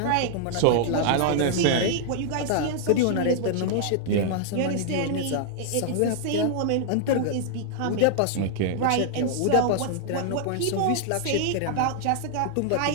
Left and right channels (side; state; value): both; different; correlation 0.00